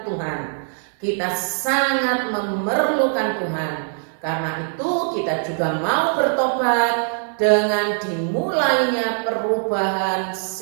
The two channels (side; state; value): left; silent; 64 dB below the other